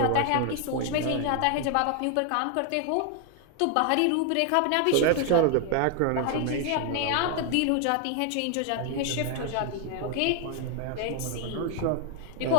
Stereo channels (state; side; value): different; both; correlation 0.00